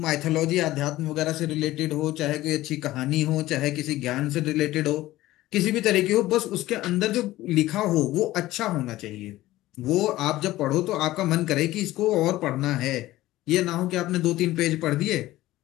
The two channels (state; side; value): quieter; right; 16.4 dB